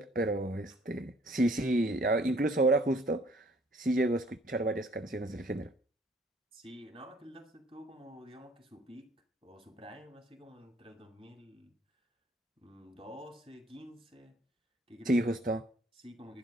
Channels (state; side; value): normal; both; correlation 0.59